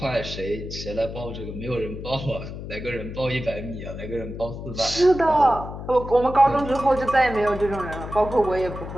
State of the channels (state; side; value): noise; left; hum, 9 dB below the sound